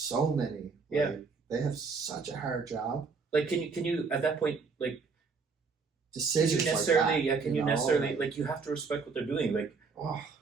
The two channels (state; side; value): quieter; left; 4.8 dB